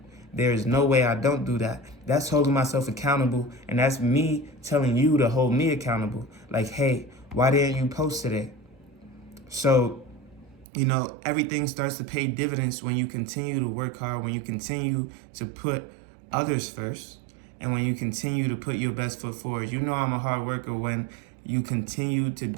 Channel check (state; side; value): drops out; left; at 10.7 s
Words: There is no way I don't do that. That's holding myself accountable, and that's me telling you to hold me accountable. Like, hey, why didn't you post today? So, you know, everything starts to pay dividends when you continue to work hard, when you continue to put others first, and when you continue to put your best foot forward. You know I'm a hard worker when you continue to